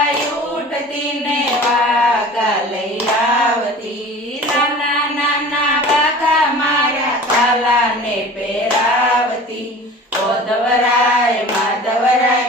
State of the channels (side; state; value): both; normal; correlation 0.41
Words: ઉઠતી ને વાઘા લઈ આવતી। નાના નાના વાઘા મારા કાલા ને પહેરાવતી। ઓ ધવરાય માધવરાય